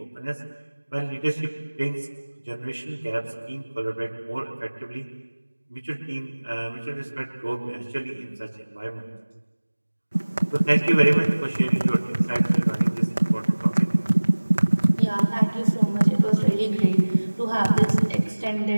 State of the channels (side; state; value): both; inverted; correlation -1.00